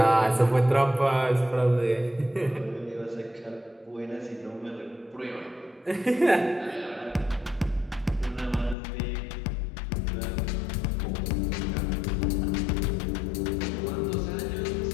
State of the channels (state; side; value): drops out; right; at 8.8 s